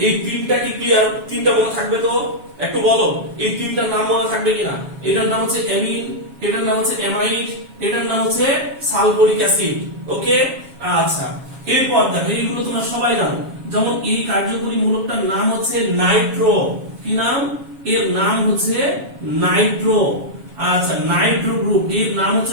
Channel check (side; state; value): left; late; 7.2 ms